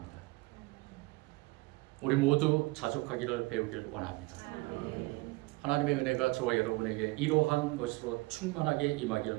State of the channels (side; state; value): left; quieter; 23.3 dB